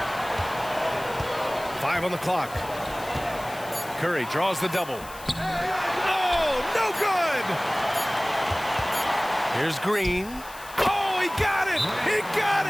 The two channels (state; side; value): noise; left; hiss, 17 dB below the sound